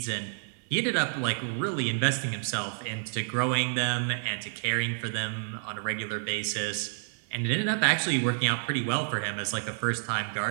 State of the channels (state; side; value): silent; left; 58 dB below the other